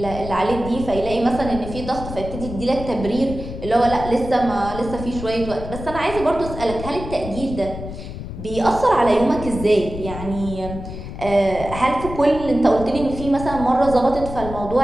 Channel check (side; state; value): left; noise; rumble, 9 dB below the sound